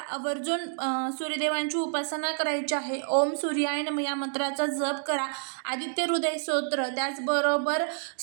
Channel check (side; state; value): left; silent; digital silence